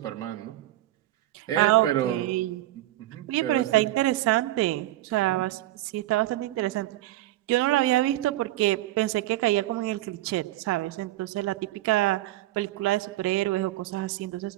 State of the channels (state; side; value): quieter; left; 15.6 dB